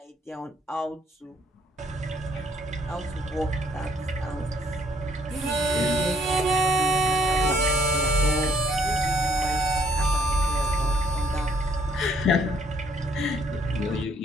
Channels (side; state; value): both; normal; correlation 0.66